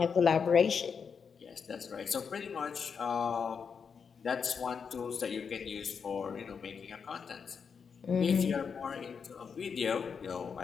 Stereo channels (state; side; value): quieter; right; 6.2 dB